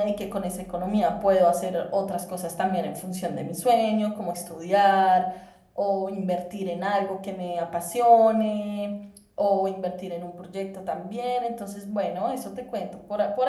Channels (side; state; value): both; identical; correlation 1.00